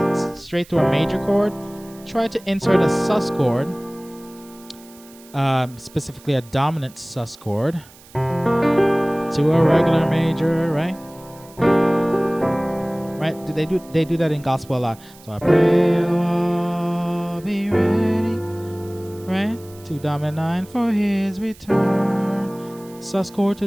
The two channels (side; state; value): right; noise; hiss, 23 dB below the sound